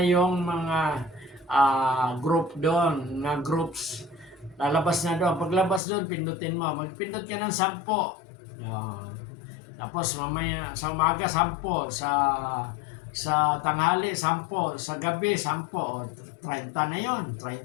yung mga group doon, na groups. Lalabas na doon. Paglabas doon, pindutin mo. Magpindot ka ng 10. Tapos mamaya sa umaga 10, sa tanghali 10, sa gabi 10, 30 na 'yon.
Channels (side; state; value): right; drops out; at 5.8 s